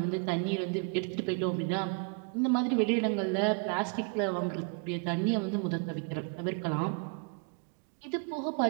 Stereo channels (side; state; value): left; quieter; 37.4 dB